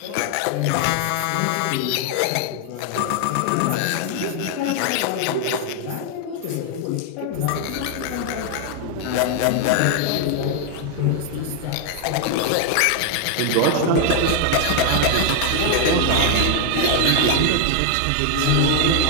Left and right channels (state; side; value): different; both; correlation 0.00